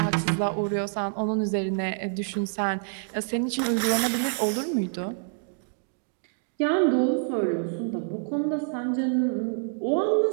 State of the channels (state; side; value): silent; left; digital silence